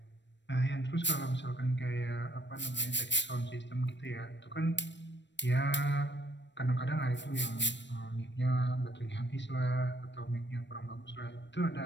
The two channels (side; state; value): right; late; 0.53 ms